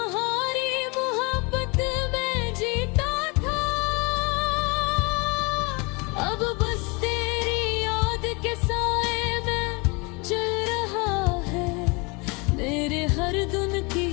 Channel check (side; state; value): right; quieter; 29.0 dB